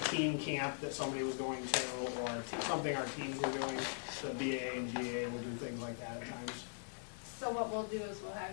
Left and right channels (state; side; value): silent; right; 51 dB below the other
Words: team camp that somebody was going to, or something our teams were doing, the BAA and GAA will do things like that at times. So what we'll do is we'll have